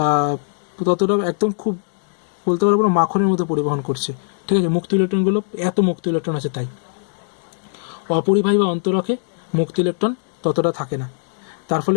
ততটা একদম খুব বলতে পারবো না, মাখনের মতো পরিবহন করছে। ঠিক আছে, মুক্ত ইলেকট্রনগুলো এত মুক্ত ইলেকট্রন আছে তাই। অপরিবাহী বা অন্তরকে মুক্ত ইলেকট্রন ততটা থাকে না, তার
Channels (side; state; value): right; silent; 65 dB below the other